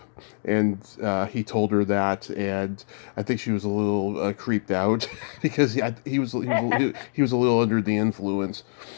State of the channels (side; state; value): right; silent; 59 dB below the other